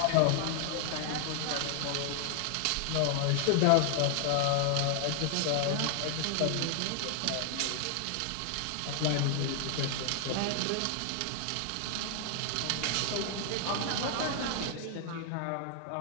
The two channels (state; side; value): different; both; correlation 0.00